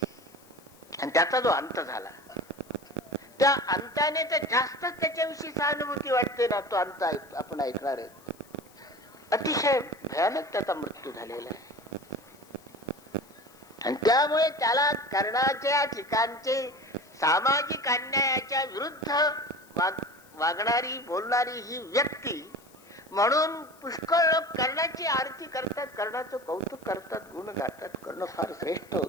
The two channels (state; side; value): noise; left; hiss, 27 dB below the sound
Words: आणि त्याचा जो अंत झाला, त्या अंताने तर जास्तच त्याच्याविषयी सहानुभूती वाटते ना. तो अंत आपण ऐकणार आहे. अतिशय भयानक त्याचा मृत्यू झालेला आहे. आणि त्यामुळे त्याला कर्णाच्या ठिकाणचे सामाजिक अन्यायाच्या विरुद्ध वागणारी, बोलणारी ही व्यक्ती म्हणून पुष्कळ लोक कर्णाची आरती करतात, कर्णाचं कौतुक करतात, गुण गातात. कर्ण फार श्रेष्ठ